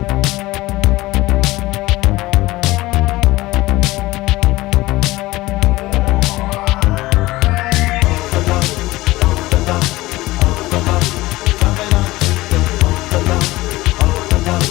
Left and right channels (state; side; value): quieter; right; 18.9 dB